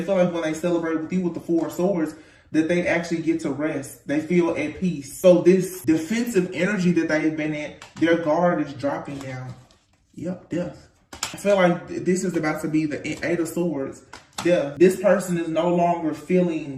feel like when they celebrate with you with the Four of Swords, that they actually get to rest. They feel at peace. So this defensive energy that they've been in, their guard is dropping down. Yep, death. I feel like this is about to be the Eight of Swords. Death. This person is no longer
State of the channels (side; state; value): both; identical; correlation 1.00